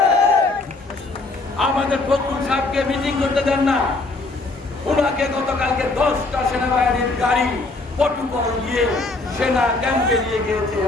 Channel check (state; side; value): quieter; right; 3.3 dB